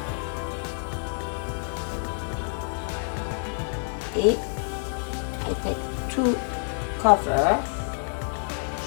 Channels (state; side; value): silent; right; digital silence